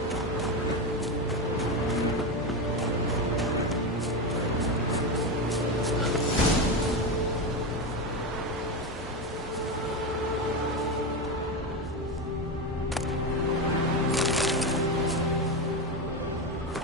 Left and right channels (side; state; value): both; normal; correlation 0.15